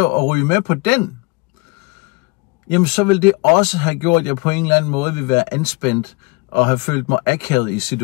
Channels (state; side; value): quieter; right; 26.7 dB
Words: ryge med på den, jamen så vil det også have gjort, at jeg på en eller anden måde vil være anspændt, og have følt mig akavet i